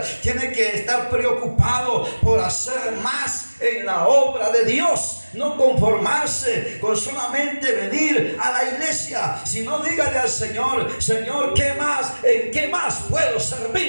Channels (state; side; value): inverted; both; correlation -1.00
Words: tiene que estar preocupado por hacer más en la obra de Dios. No conformarse con solamente venir a la iglesia, sino dígale al Señor, Señor, ¿qué más? ¿En qué más puedo